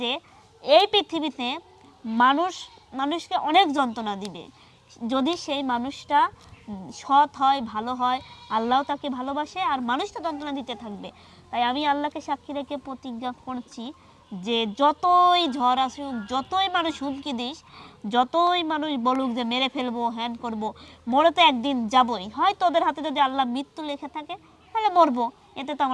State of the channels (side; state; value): both; identical; correlation 1.00